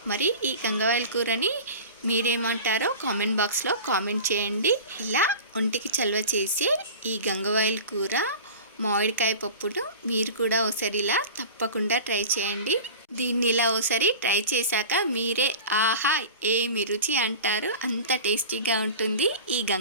మరి ఈ గంగవాయల కూరని మీరేమంటారో కామెంట్ బాక్స్లో కామెంట్ చేయండి. ఇలా ఒంటికి చలవ చేసే ఈ గంగవాయల కూర మామిడికాయ పప్పును మీరు కూడా ఒకసారి ఇలా తప్పకుండా ట్రై చేయండి. దీన్ని ఇలా ఒకసారి ట్రై చేశాక మీరే ఆహా ఏమి రుచి అంటారు. అంత టేస్టీగా ఉంటుంది ఈ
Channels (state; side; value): inverted; both; correlation -0.35